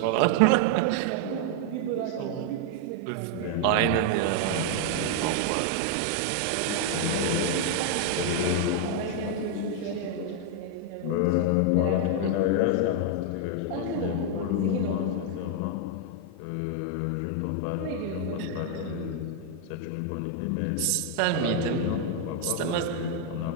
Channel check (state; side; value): different; both; correlation 0.00